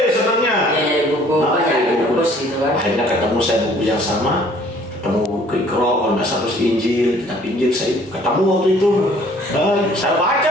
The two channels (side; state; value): both; normal; correlation 0.56